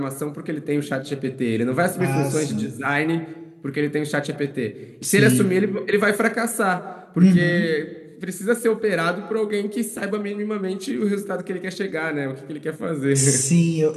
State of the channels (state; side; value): identical; both; correlation 1.00